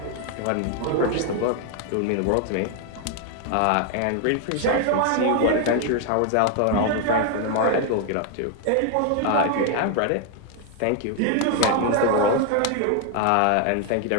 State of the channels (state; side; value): different; both; correlation 0.00